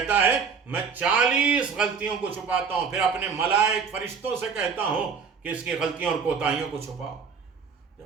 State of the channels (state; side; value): quieter; left; 5.9 dB